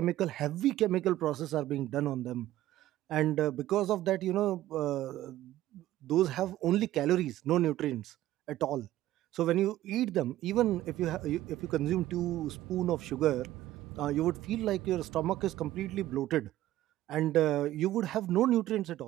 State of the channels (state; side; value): quieter; left; 14.5 dB